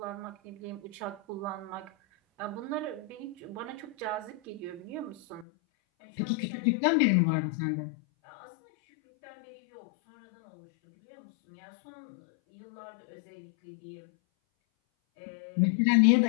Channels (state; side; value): drops out; right; at 5.5 s